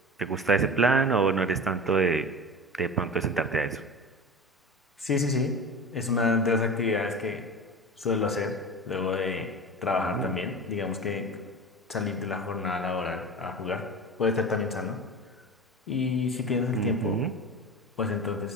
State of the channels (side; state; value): both; normal; correlation 0.31